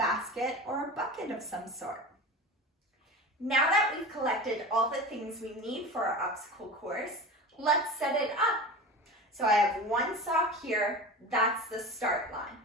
or a bucket of some sort. Now that we've collected all the things we need for our obstacle course, let's set it up. So I have 1 sock here, that's the start line.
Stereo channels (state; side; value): normal; both; correlation 0.31